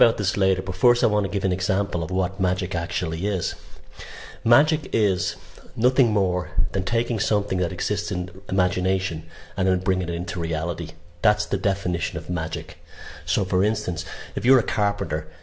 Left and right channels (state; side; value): identical; both; correlation 1.00